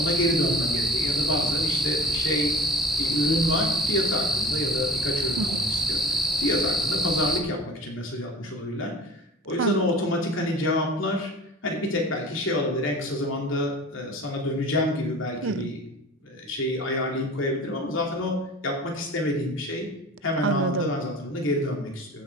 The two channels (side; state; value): both; normal; correlation 0.41